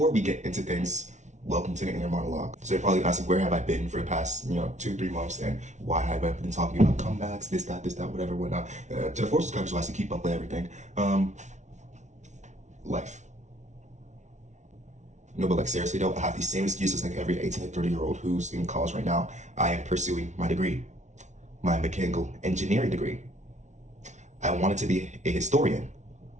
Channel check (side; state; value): left; late; 0.34 ms